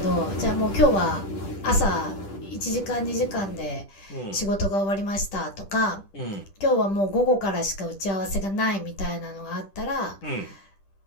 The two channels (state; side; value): late; right; 10 ms